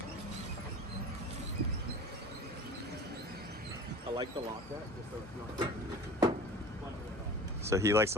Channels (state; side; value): normal; both; correlation 0.39